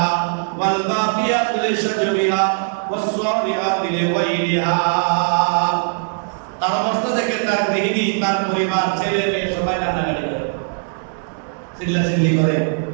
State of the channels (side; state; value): left; silent; digital silence